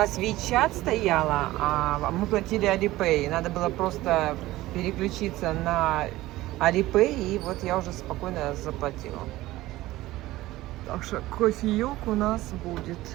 WeChat стояла, а мы платили Alipay. Надо было просто переключиться на Alipay, и вот я уже спокойно заплатила. Так что кофеек у нас будет.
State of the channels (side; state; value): left; quieter; 17.2 dB